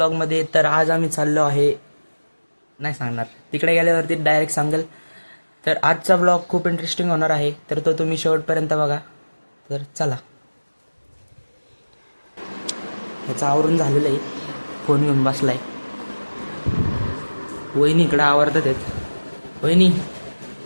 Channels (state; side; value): inverted; both; correlation -1.00